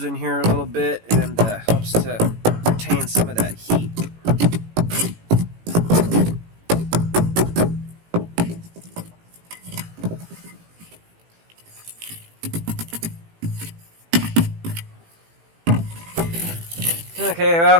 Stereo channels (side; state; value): left; late; 18 ms